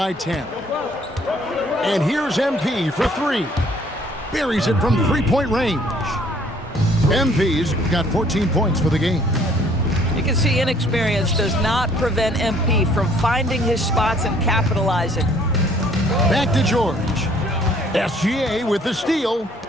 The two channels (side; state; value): both; normal; correlation 0.60